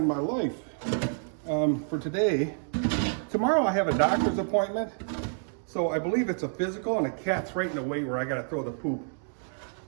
my life for today? Tomorrow I have a doctor's appointment, so I believe it's a physical, and the cat's right in the way where I gotta throw the poop.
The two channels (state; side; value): silent; left; 59 dB below the other